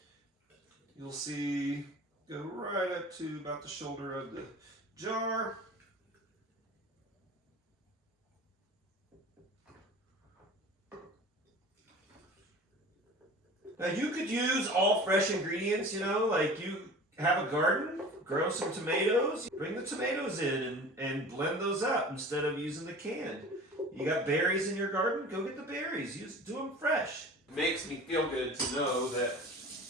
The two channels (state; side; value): normal; both; correlation 0.40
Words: You'll see, go right up to about the shoulder of the jar. Now you could use all fresh ingredients, you know, like you have a garden, grow some tomatoes, bring the tomatoes in and blend those up instead of using the canned. You got berries in your garden, go get the berries, do them fresh. It makes me feel good to know that